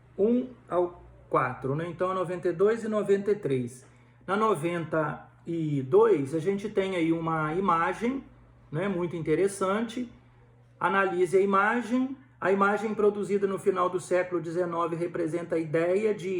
1 ao 4, né? Então a 92 e 93. Na 92 a gente tem aí uma imagem, né? Muito interessante. Analise a imagem. A imagem produzida no final do século XIX representa a ideia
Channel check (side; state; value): both; identical; correlation 1.00